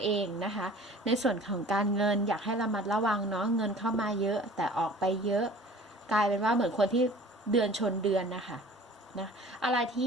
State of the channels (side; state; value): both; normal; correlation 0.46